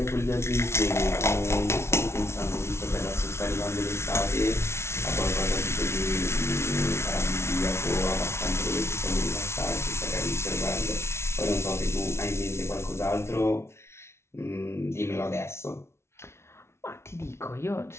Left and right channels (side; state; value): right; late; 0.13 ms